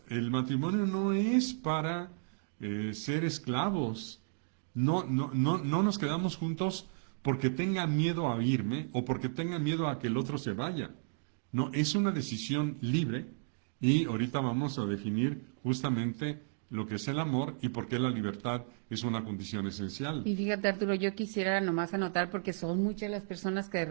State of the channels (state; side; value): silent; left; digital silence